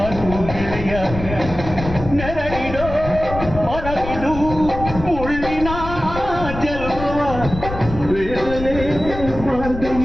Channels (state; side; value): noise; left; rumble, 9 dB below the sound